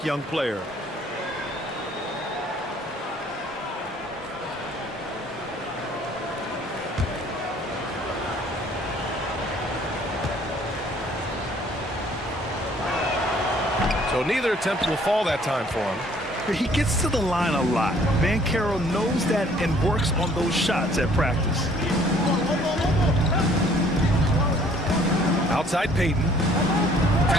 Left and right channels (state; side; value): normal; both; correlation 0.58